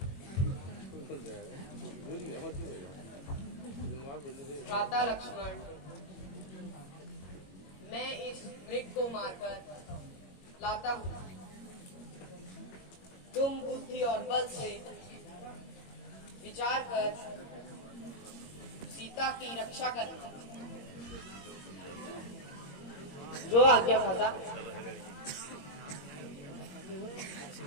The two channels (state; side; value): late; right; 21 ms